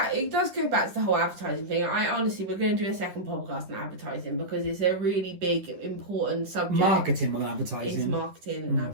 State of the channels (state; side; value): late; left; 10 ms